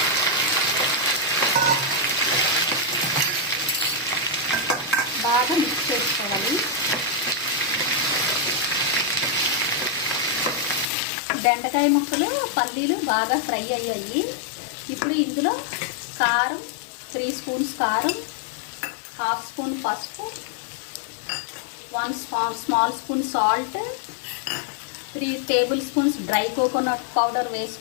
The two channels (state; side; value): drops out; right; at 10.9 s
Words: బాగా మిక్స్ చేసుకోవాలి. బెండకాయ ముక్కలు పల్లీలు బాగా ఫ్రై అయ్యాయి. ఇప్పుడు ఇందులో కారం 3 స్పూన్స్ కారం, 1/2 స్పూన్ పసుపు, 1 small spoon salt, 3 table spoons dry coconut powder